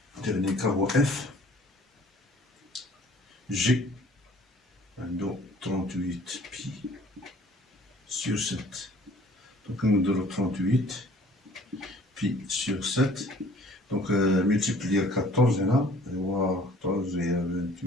cas هو F G 38 pi sur 7. Donc on a 38 pi sur 7. Donc multiplier 14 là, 14 et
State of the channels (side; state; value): both; normal; correlation 0.54